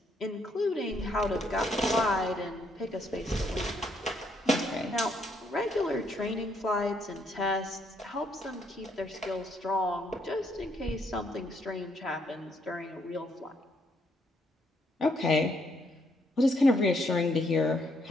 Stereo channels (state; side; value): normal; both; correlation 0.72